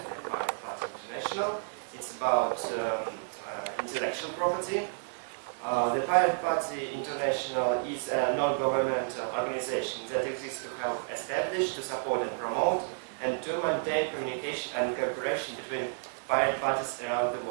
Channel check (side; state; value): left; silent; 57 dB below the other